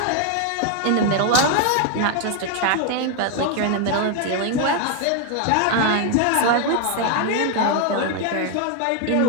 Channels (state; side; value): different; both; correlation 0.01